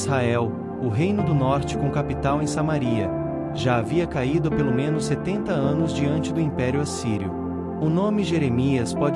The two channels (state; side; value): identical; both; correlation 1.00